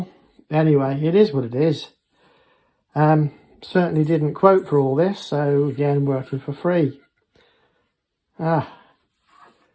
Anyway, it is what it is. Certainly didn't quote for all this, so again, working for free.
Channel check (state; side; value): identical; both; correlation 1.00